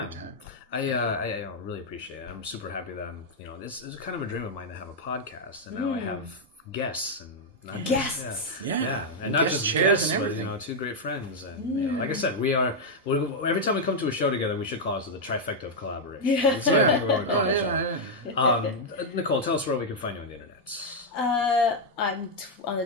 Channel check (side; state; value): both; normal; correlation -0.02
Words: time. I really appreciate it. I'm super happy that this is kind of a dream of mine to have a podcast, and now I have guests and not guests. And not just guests, but two great friends. And like I said, every time we come to a show together, we should call it the Trifecta of Collaboration. Yeah. That's what I think we're going to call it. Nicole, tell us where we can find you on the internet. I'm on the